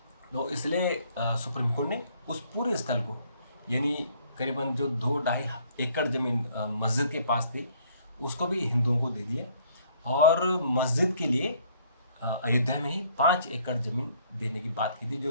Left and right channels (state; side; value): inverted; both; correlation -0.62